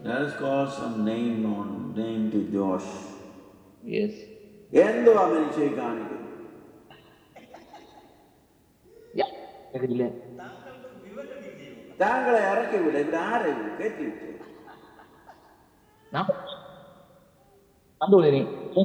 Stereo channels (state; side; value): identical; both; correlation 1.00